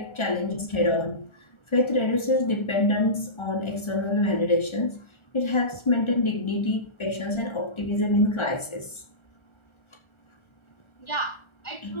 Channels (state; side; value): late; right; 1.4 ms